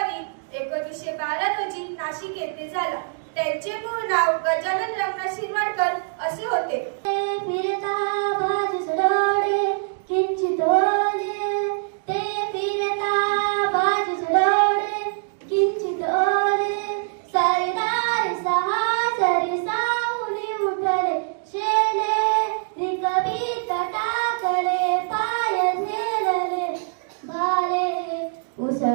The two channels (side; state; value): left; silent; digital silence